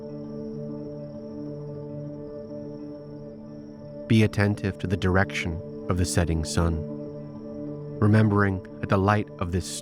Be attentive to the direction of the setting sun, remembering that the light of this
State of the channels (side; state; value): both; identical; correlation 1.00